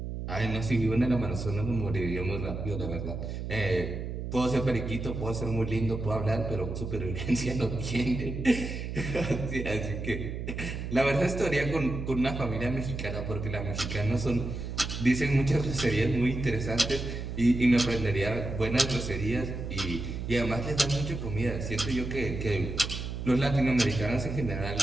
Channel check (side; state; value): right; noise; hum, 5 dB below the sound